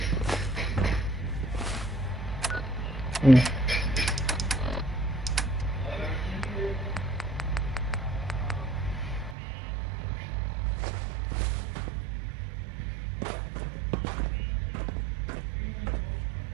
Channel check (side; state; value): left; drops out; at 9.3 s